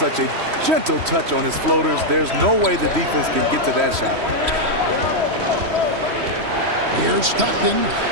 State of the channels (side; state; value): left; late; 3.1 ms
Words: a gentle touch on his floaters. There's no way the defense can get to that shot. Here's Stockton.